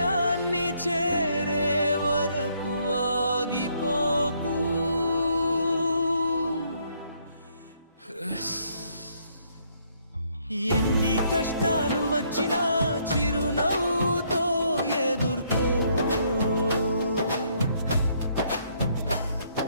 చేరే వరకు ఆగిపోకు. ఎన్ని కష్టాలు వచ్చినా చిరునవ్వుతో ఎదుర్కో.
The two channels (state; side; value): inverted; both; correlation -0.69